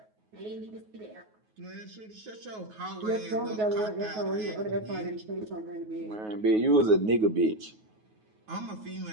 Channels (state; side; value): late; left; 9.4 ms